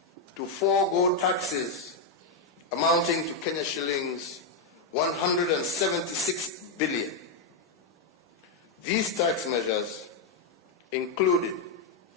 to forego taxes amounting to Kenya shillings 176 billion. These tax measures included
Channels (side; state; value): right; quieter; 3.8 dB